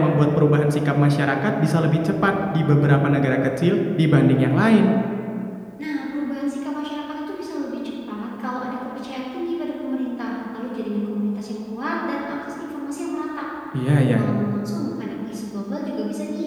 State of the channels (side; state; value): both; identical; correlation 1.00